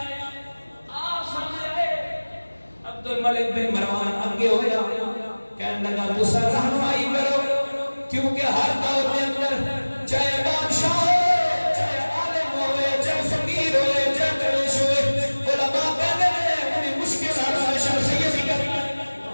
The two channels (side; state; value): both; inverted; correlation -1.00